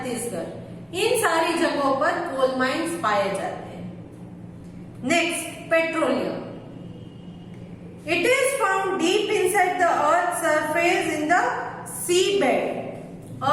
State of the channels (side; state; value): both; identical; correlation 1.00